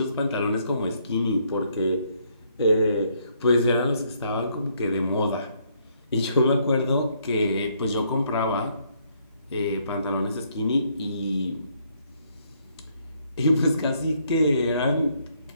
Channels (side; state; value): both; inverted; correlation -0.70